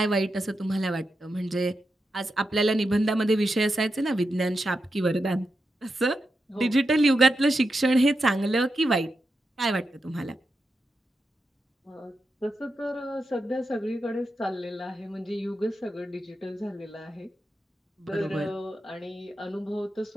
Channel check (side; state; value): both; normal; correlation 0.88